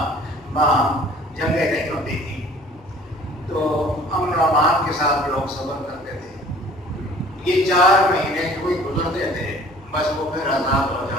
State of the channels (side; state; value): left; noise; hum, 27 dB below the sound